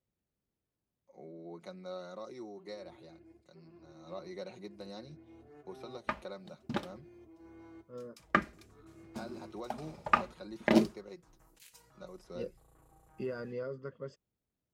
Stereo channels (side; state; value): both; identical; correlation 1.00